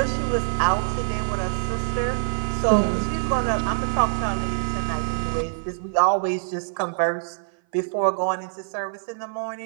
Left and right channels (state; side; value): silent; left; 57 dB below the other